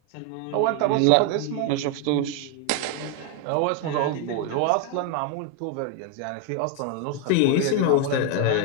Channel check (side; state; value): both; different; correlation 0.01